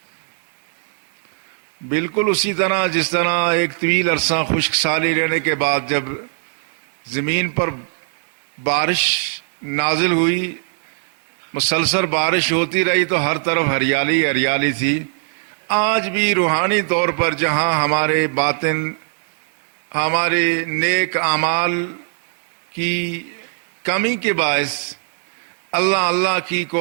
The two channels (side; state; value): left; silent; digital silence